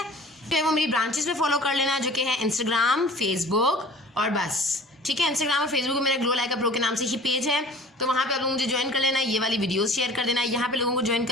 तो वो मेरी ब्रांचेस में फॉलो कर लेना, जो कि है इंस्टाग्राम, फेसबुक और बस, ठीक है। इंस्टाग्राम और फेसबुक में मेरा ग्लो लाइक अ प्रो के नाम से ही पेज है, तो वहाँ पे आप लोग मुझे ज्वाइन कर लेना, ये वाली वीडियोस शेयर कर देना, यहाँ पे लोगों को ज्वाइन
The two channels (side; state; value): both; normal; correlation 0.46